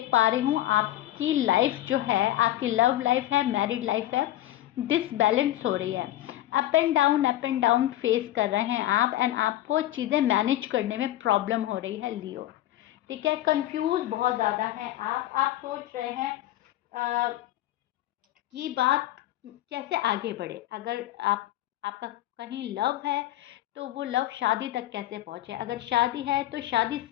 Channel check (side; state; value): right; quieter; 14.3 dB